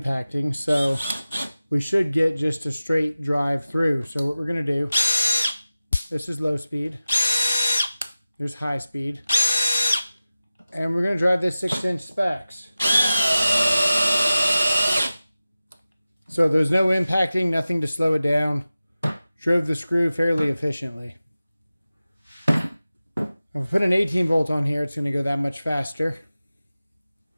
so we should get just a straight drive through. So what we're going to do, this is low speed, here's high speed, and we're going to drive this 6-inch specs. So there's no impacting, nothing to slow it down. Drove the screw fairly efficiently. If I put an 18-volt on here, it's going to go that much faster.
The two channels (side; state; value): both; inverted; correlation -0.96